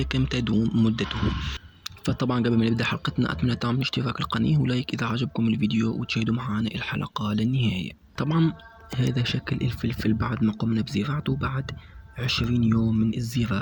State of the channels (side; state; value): both; identical; correlation 1.00